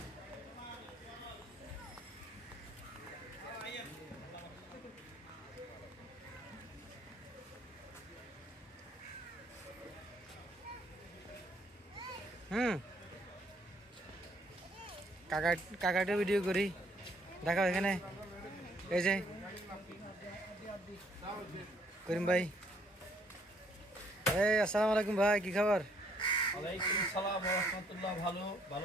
কাকাটা ভিডিও করি দেখাও এখানে এই যে করিম ভাই এই আসসালামু আলাইকুম ভাই কি খবর ওয়ালাইকুম আসসালাম ওয়া রাহমাতুল্লাহ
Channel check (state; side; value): normal; both; correlation 0.66